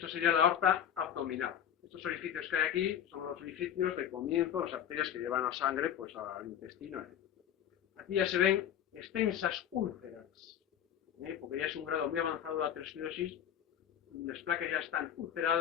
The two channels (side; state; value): right; quieter; 9.8 dB